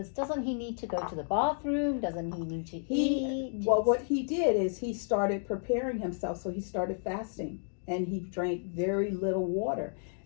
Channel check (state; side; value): silent; right; digital silence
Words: doesn't he need to go to the bathroom? Doesn't he need to eat? Well, what he did is he started preparing himself. So he started fasting and he drank very little water.